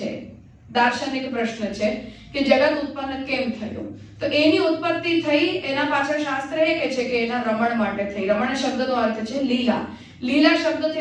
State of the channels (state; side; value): identical; both; correlation 1.00